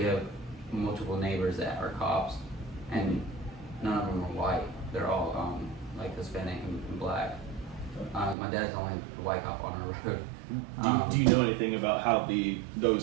have multiple neighbors that are cops, and none of them are white. They're all like Hispanic and black. My dad's the only white cop on our road. Do you know anything about how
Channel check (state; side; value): drops out; left; at 8.3 s